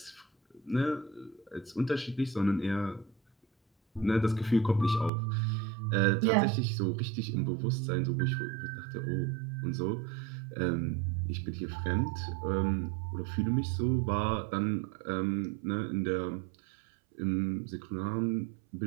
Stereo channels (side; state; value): left; drops out; at 5.1 s